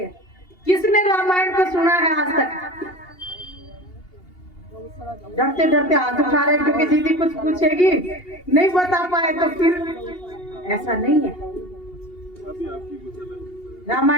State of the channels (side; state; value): right; late; 2.8 ms